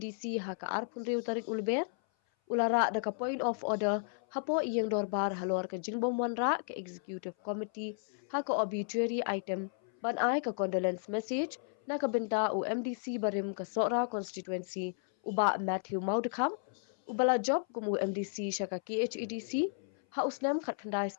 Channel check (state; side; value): silent; right; 55 dB below the other